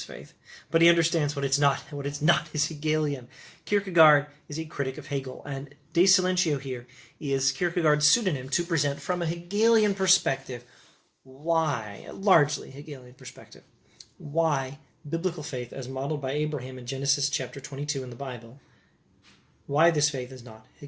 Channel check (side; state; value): both; identical; correlation 1.00